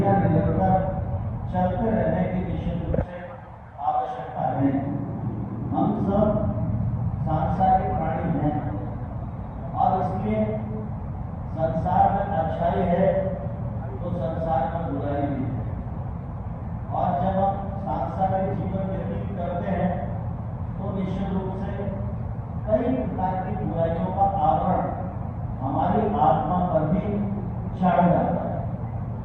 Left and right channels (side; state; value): both; identical; correlation 1.00